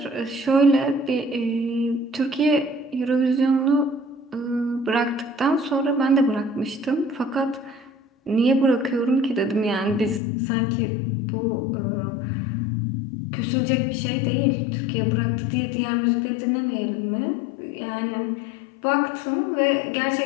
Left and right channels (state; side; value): drops out; right; at 10.2 s